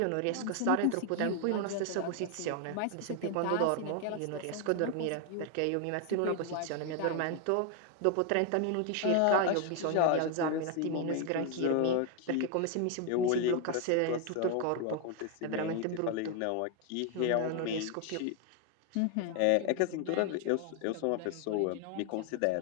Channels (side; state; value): both; different; correlation 0.01